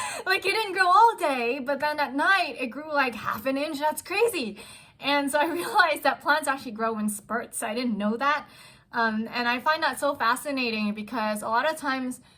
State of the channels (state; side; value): identical; both; correlation 1.00